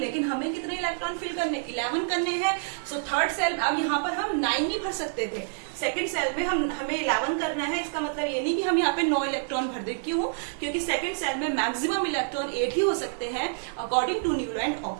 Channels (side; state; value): left; silent; digital silence